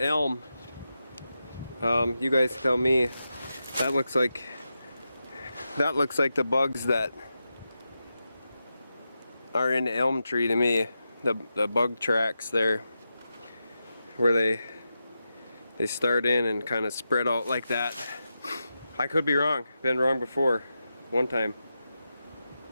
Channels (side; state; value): both; inverted; correlation -0.89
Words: You guys tell me. That looks like the bugs that are in the elm tree to me. The bug tracks there, where they start in and kind of spread out like that. I could be wrong. Been wrong before, one time.